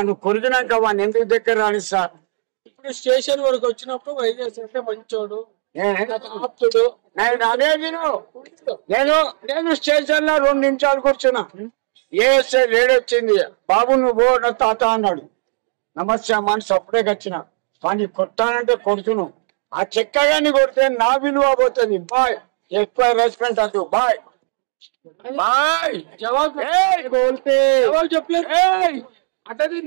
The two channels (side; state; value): left; silent; 59 dB below the other